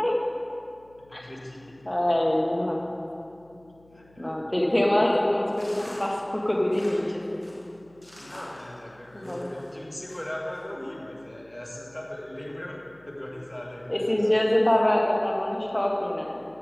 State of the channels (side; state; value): left; noise; hum, 29 dB below the sound